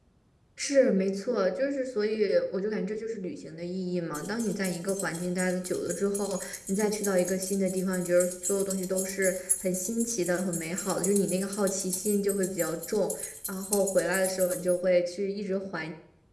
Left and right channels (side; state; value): both; identical; correlation 1.00